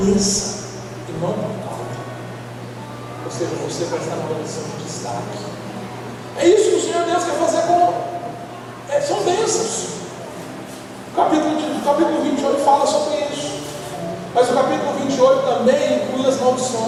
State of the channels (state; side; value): identical; both; correlation 1.00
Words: e não por cauda. Ou seja, você vai estar numa posição de destaque. É isso que o Senhor Deus quer fazer com. São bênçãos. O capítulo 28 fala sobre isso. Mas o capítulo 28 também inclui as